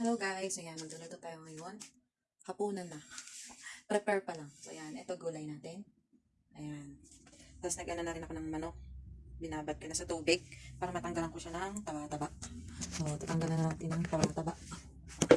guys, ayan, magluluto tayo ngayon. Hapunan na. Prepare pa lang. So ayan, ito gulay natin. Ayan. Tapos nag-ano na rin ako ng manok. Binabad ko na sa tubig para matanggalan ko siya ng taba-taba. So, tatanggalan na natin ng taba-taba.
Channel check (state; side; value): identical; both; correlation 1.00